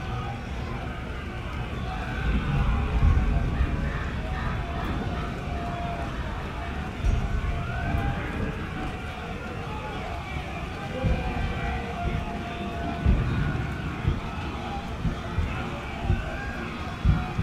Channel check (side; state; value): both; identical; correlation 1.00